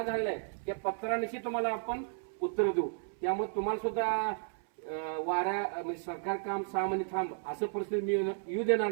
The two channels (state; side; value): silent; left; 55 dB below the other